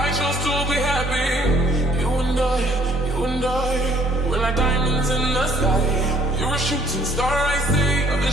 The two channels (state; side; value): normal; both; correlation 0.61